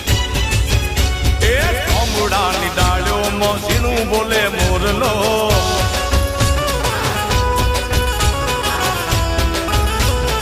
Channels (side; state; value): both; identical; correlation 1.00